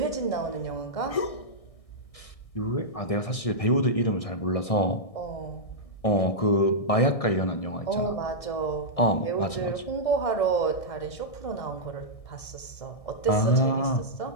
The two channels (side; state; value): right; late; 1.6 ms